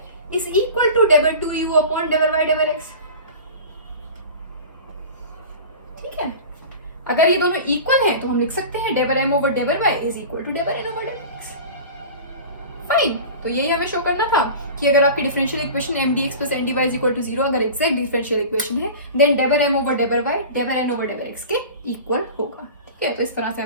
इज इक्वल टू डेबर 2u अपॉन डेबर y डेबर x। ठीक है, अगर ये दोनों इक्वल हैं तो हम लिख सकते हैं डेबर m ओवर डेबर y इज इक्वल टू डेबर n ओवर डेबर x। फाइन, तो यही हमें शो करना था कि अगर आपकी differential equation M d x plus N d y is equal to 0 अगर एग्जैक्ट डिफरेंशियल इक्वेशन है देन डेबर m ओवर डेबर y डेबर n ओवर डेबर x के इक्वल होगा। ठीक है, तो इस तरह से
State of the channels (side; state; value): both; inverted; correlation -0.36